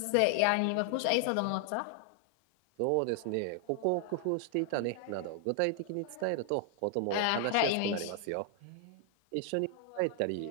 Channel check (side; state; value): both; different; correlation 0.00